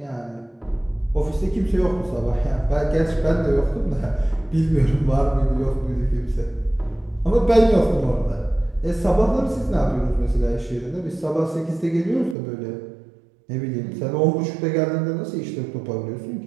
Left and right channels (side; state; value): left; drops out; at 12.4 s